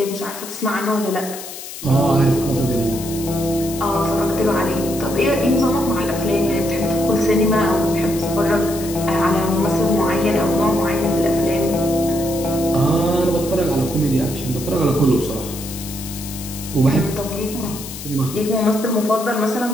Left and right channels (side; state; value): left; noise; hiss, 11 dB below the sound